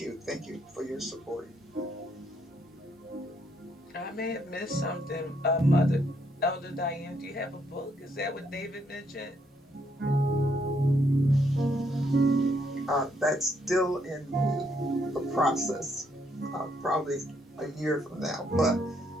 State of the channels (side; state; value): both; normal; correlation 0.73